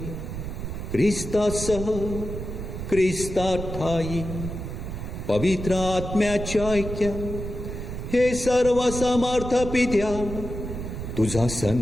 ख्रिस्तासह, ख्रिस्ताठायी पवित्र आत्म्याच्या ऐक्या हे सर्व समर्थ पित्या, तुझा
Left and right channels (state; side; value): noise; right; rumble, 7 dB below the sound